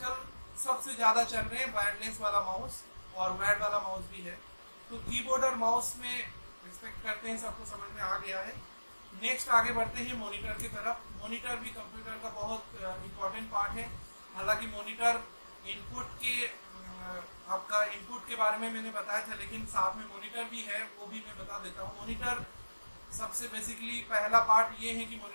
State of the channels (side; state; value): both; inverted; correlation -1.00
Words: सबसे ज़्यादा चल रहे हैं वायरलेस वाला माउस, और वायर्ड वाला माउस भी है। तो कीबोर्ड और माउस में रिस्पेक्ट करते हैं, सबको समझ में आ गया है। नेक्स्ट आगे बढ़ते हैं मॉनिटर की तरफ। मॉनिटर भी कंप्यूटर का बहुत इम्पोर्टेंट पार्ट है। हालांकि मॉनिटर इनपुट के बारे में मैंने बताया था, लेकिन साथ में मॉनिटर भी है, वो भी मैं बता देता हूँ। मॉनिटर सबसे बेसिकली पहला पार्ट ये है कि